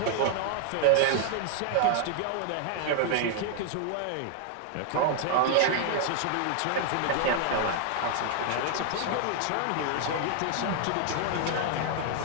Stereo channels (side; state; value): both; different; correlation 0.00